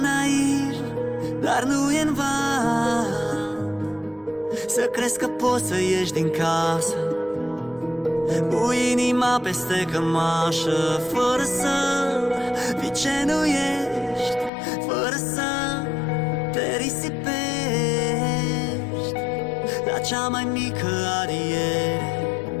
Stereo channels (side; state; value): right; drops out; at 14.5 s